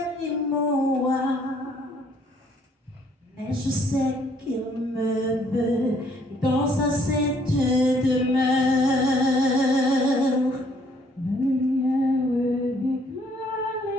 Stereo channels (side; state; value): both; normal; correlation 0.64